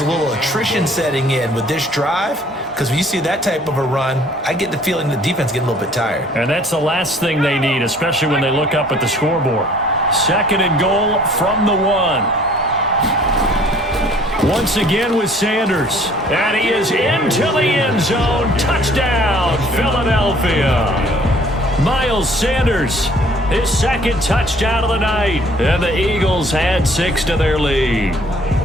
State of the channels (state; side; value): normal; both; correlation 0.56